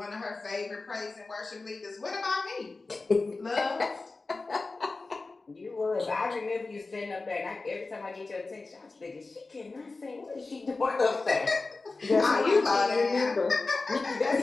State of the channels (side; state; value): right; quieter; 3.6 dB